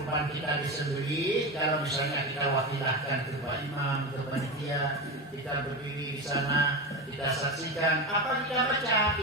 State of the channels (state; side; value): normal; both; correlation 0.20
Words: kita disembelih. Kalau misalnya kita wakilahkan ke Pak Imam, ke panitia, kita berdiri di sana, kita saksikan, apa kita baca,